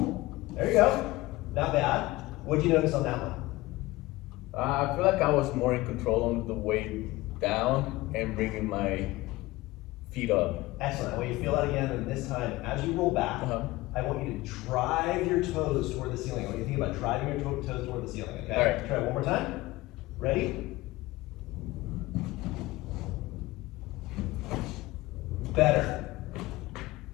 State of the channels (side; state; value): right; quieter; 19.3 dB